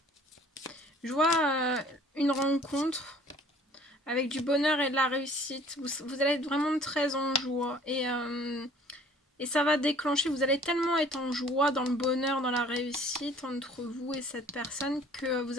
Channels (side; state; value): both; normal; correlation 0.53